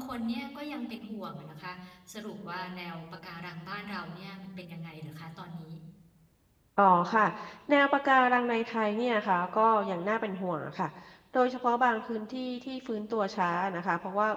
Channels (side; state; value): both; identical; correlation 1.00